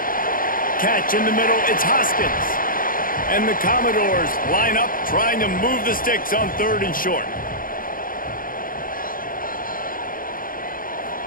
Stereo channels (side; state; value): right; late; 0.41 ms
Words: Catch in the middle, it's Hoskins. And the Commodores line up, trying to move the sticks on 3rd and short.